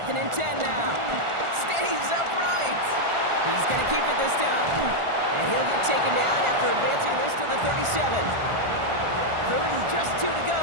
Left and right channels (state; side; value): late; left; 1.4 ms